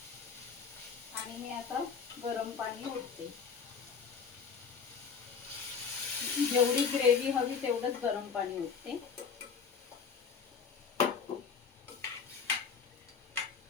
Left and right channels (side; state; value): right; quieter; 6.2 dB